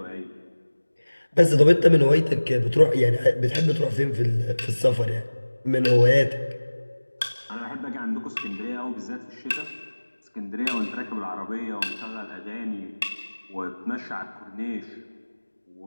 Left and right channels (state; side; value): inverted; both; correlation -1.00